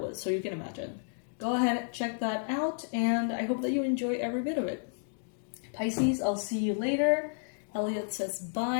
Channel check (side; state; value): right; silent; digital silence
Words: so you can imagine. Go ahead, check that out, and I hope that you enjoy every bit of it. Pisces, I'll see you later. Elliot says